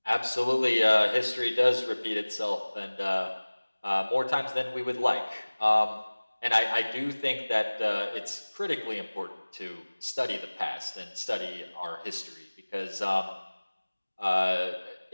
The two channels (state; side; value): inverted; both; correlation -1.00